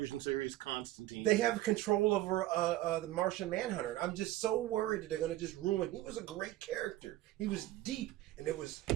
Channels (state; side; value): quieter; left; 16.0 dB